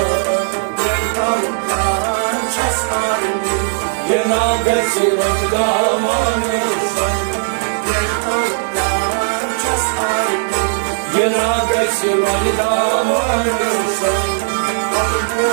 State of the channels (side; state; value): left; silent; 68 dB below the other